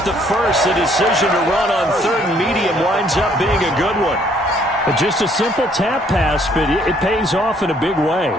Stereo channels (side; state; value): both; normal; correlation 0.64